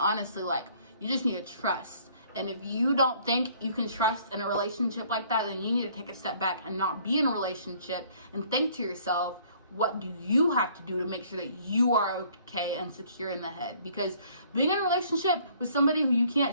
like, you just need to trust. And if you don't think you can trust in a relationship like that, then you need to take a step back and not be in a relationship and think to yourself, what do you have to do to make sure that you are okay and secure in the head? Because being in a relationship with somebody who you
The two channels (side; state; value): both; inverted; correlation -0.59